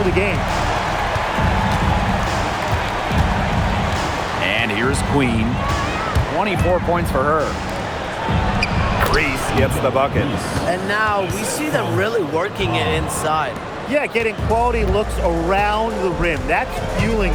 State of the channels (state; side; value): identical; both; correlation 1.00